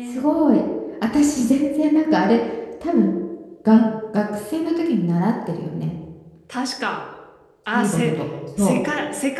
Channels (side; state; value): both; identical; correlation 1.00